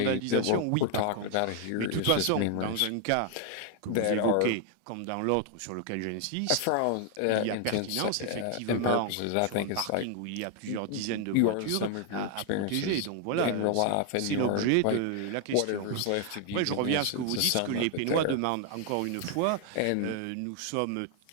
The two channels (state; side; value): different; both; correlation 0.00